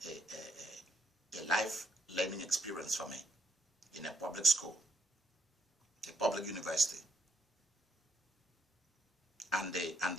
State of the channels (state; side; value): normal; both; correlation 0.75